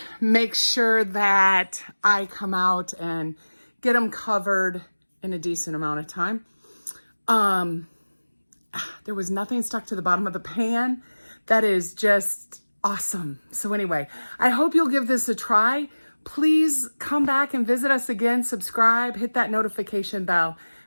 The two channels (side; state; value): both; inverted; correlation -1.00